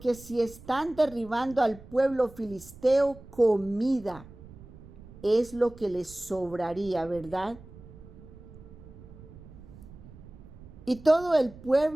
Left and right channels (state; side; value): noise; right; rumble, 18 dB below the sound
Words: si están derribando al pueblo filisteo, comida es lo que les sobraría, ¿verdad? Y todo el